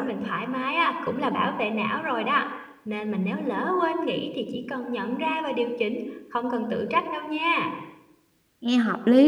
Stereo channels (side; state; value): both; identical; correlation 1.00